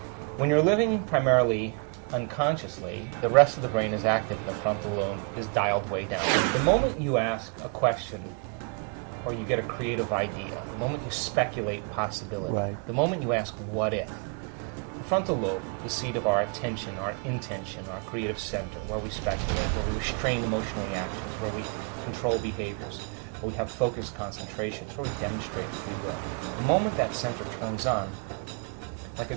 When you're living primarily unconsciously, the rest of the brain is active and the frontal lobe is dialed way down. The moment you ask a question or you get a creative idea, the moment you speculate possibility, the moment you ask what if, the frontal lobe, the seat of our attention, our intention, our creative center, where we speculate, where we restrain emotional reactions, where we control behaviors, where we have focused concentrations, where we demonstrate free will. The moment that center turns on, like a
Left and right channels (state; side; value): quieter; left; 36.1 dB